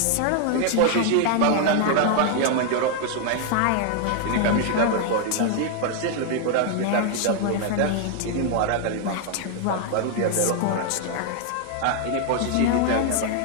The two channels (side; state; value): both; different; correlation 0.00